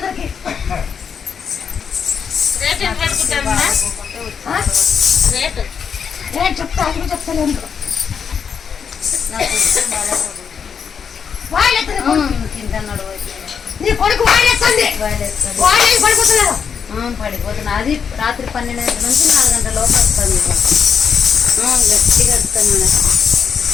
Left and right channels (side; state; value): right; quieter; 6.8 dB